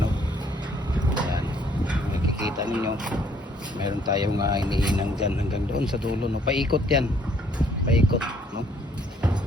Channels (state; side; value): normal; both; correlation 0.64